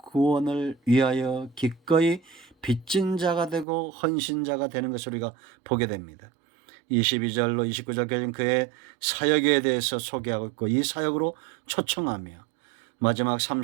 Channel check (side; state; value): left; drops out; at 3.7 s